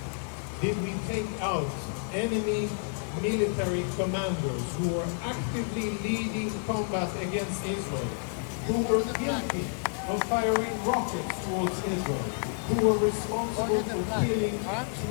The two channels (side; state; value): right; silent; 58 dB below the other